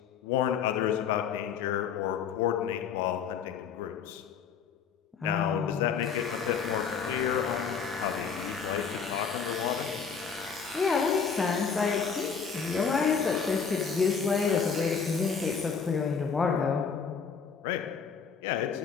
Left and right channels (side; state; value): right; quieter; 6.3 dB